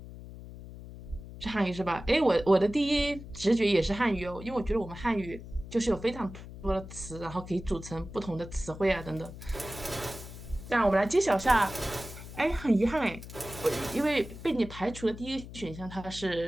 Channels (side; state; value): left; noise; hum, 13 dB below the sound